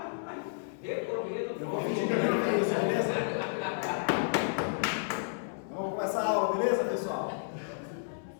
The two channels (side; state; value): right; silent; 57 dB below the other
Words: Eu vou pedir primeiro para isso, beleza? Vamos começar a aula, beleza, pessoal?